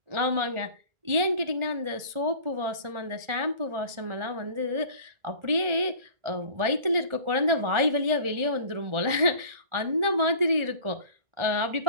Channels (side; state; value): left; late; 1.4 ms